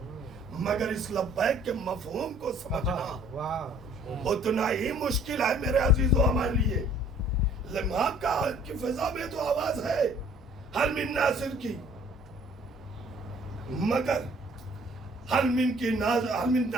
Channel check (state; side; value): normal; both; correlation 0.56